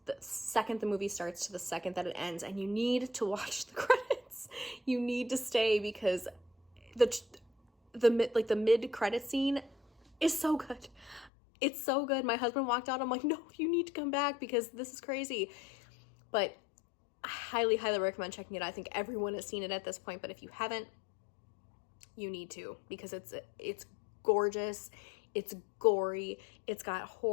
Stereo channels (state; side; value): drops out; right; at 11.3 s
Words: the second the movie starts to the second that it ends, and you need to watch the credits. You need to stay because the mid credit scene is so good. It's so good. My husband walked out. I'm like, no, you need to come back because this is crazy. But I highly, highly recommend checking it out. I think everyone has seen it at this point, but if you haven't, you need to, because it's gorgeous, it's gory, it's got